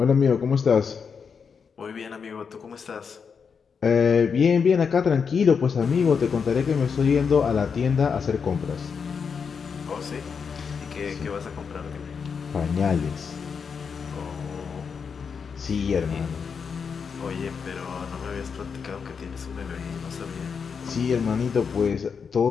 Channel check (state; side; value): quieter; right; 6.1 dB